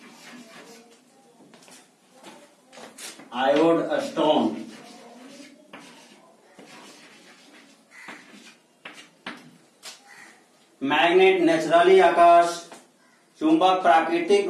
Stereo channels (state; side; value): identical; both; correlation 1.00